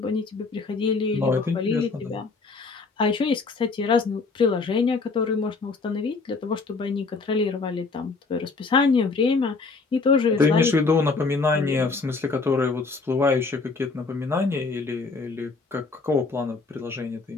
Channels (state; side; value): quieter; right; 4.2 dB